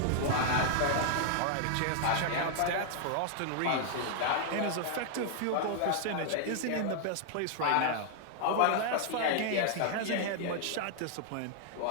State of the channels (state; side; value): different; both; correlation -0.01